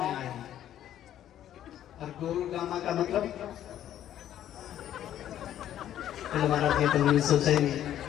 आया हूं। और गोरगामा का मतलब हमारा ये तो नहीं सोचा ही नहीं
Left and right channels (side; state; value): right; quieter; 11.4 dB